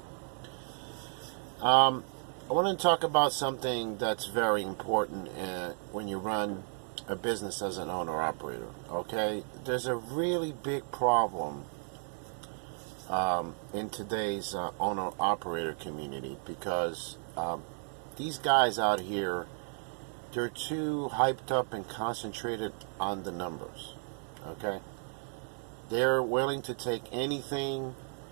I want to talk about something that's very important when you run a business as an owner operator. Okay, there's a really big problem in today's owner-operator community because these guys out here, they're too hyped up and concentrated on the numbers, okay? They're willing to take anything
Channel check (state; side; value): silent; left; 55 dB below the other